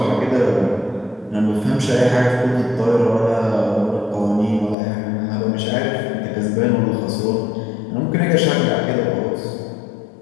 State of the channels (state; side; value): drops out; right; at 4.8 s